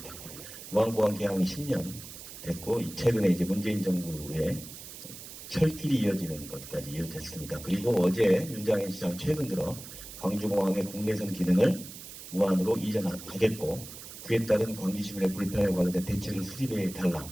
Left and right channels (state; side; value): noise; right; hiss, 13 dB below the sound